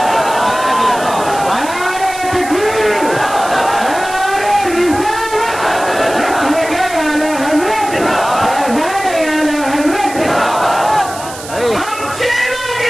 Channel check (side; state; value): right; noise; hiss, 13 dB below the sound